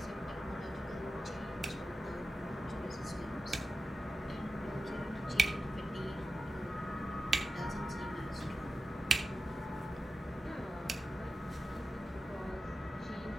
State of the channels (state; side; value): normal; both; correlation 0.91